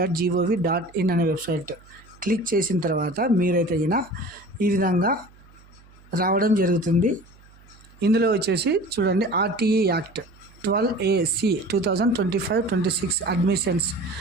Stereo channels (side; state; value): right; noise; hum, 26 dB below the sound